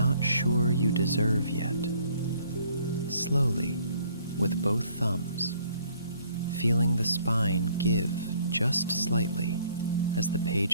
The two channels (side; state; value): both; inverted; correlation -0.61